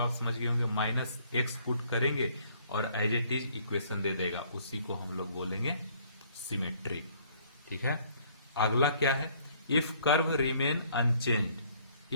समझ गए होंगे, -x पुट करेंगे और एज इट इज इक्वेशन दे देगा, उसी को हम लोग बोलेंगे सिमेट्रिक। ठीक है, अगला क्या है, if curve remain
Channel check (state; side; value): inverted; both; correlation -0.62